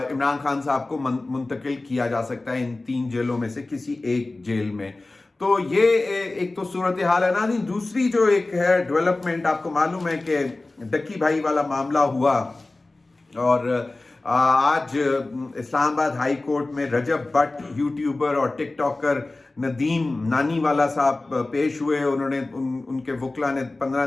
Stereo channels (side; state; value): right; quieter; 3.1 dB